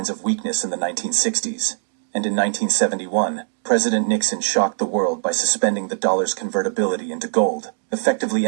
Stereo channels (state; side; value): silent; left; digital silence